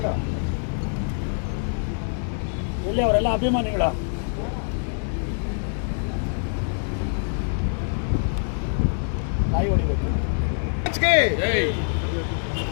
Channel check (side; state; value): right; silent; digital silence